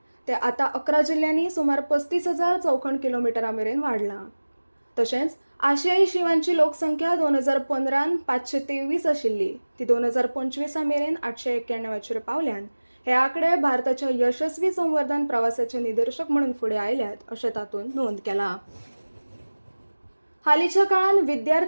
ते आतां 11 जिल्ल्यांनी सुमार 35,000 चौखण किलोमिटरा मेरेन वाडलां. तशेंच आशियाई शिंवांची लोकसंख्या 2015 523 आशिल्ली ती 2025 मेरेन 891 पावल्यान हे आंकडे भारताच्या यशस्वी संवर्धन प्रवासाचे निदर्शक म्हणून फुडें आयल्यात अशें तातूंत नोंद केला. हालींच्या काळात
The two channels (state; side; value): inverted; both; correlation -1.00